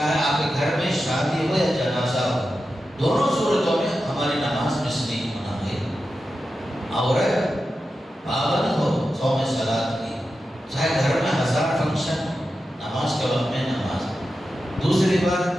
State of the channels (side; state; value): both; normal; correlation 0.91